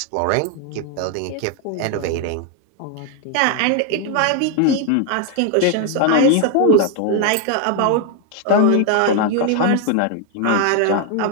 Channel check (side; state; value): both; different; correlation 0.01